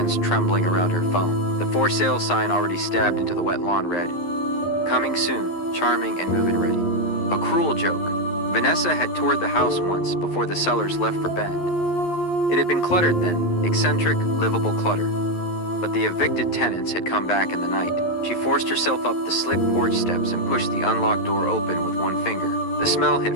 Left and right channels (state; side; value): late; right; 11 ms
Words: trembling around her phone. The for sale sign already stabbed into the wet lawn read, "Coming soon, charming and move-in ready." A cruel joke. Vanessa had toured the house once before the sellers left for Bend. It had been cluttered then, eccentric, livable clutter. But the evicted tenants had come back in the night. She forced herself up the slick porch steps and pushed the unlocked door open with one finger. The smell hit